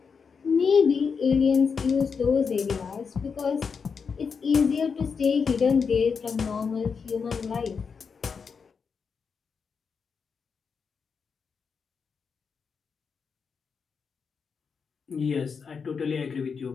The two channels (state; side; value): quieter; right; 5.8 dB